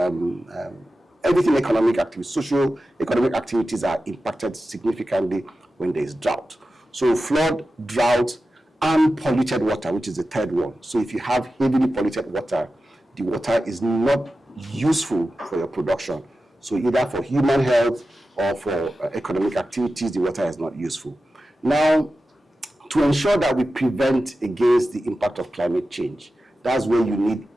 everything economic activities, social economic activities are impacted significantly when there is drought. So flood, drought, and polluted water, which is the third one. So if you have heavily polluted water, the water is not useful for your production. So either for human health or for economic activities, the water is not useful. Now, to ensure that we prevent against the impact of climate change, that's where you need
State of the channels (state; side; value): normal; both; correlation 0.93